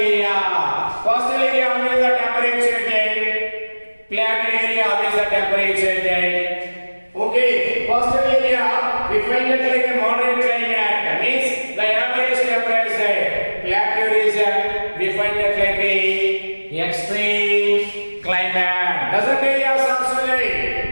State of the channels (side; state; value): both; inverted; correlation -1.00